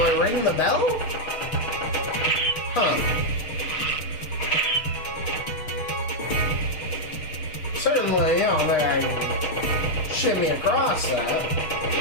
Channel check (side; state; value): right; late; 6.5 ms